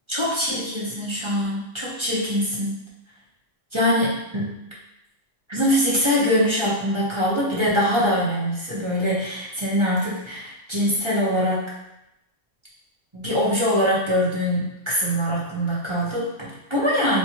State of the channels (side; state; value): left; late; 1.3 ms